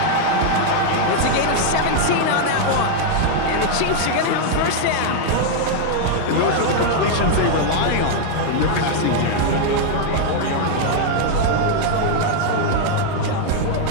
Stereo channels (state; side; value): different; both; correlation 0.00